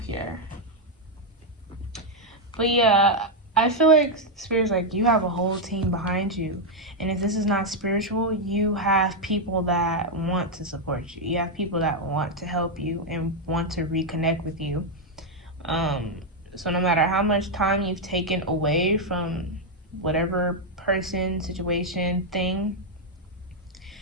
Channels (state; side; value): normal; both; correlation 0.00